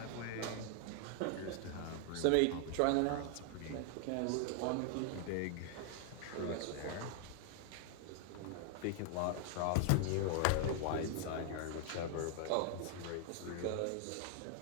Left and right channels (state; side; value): different; both; correlation 0.00